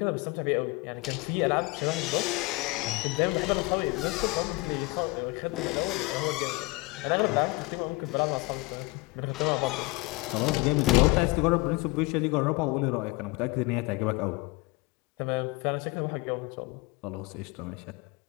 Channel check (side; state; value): right; quieter; 24.4 dB